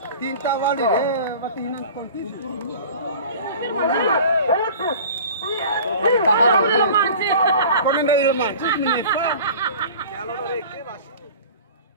Tinta wali waktu hinan konti. Kau nenda ilman, menyesal.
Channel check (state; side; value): inverted; both; correlation -0.42